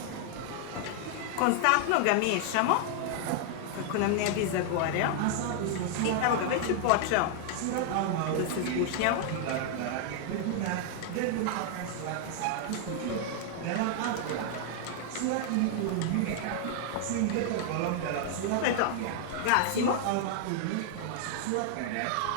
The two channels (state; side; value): different; both; correlation 0.00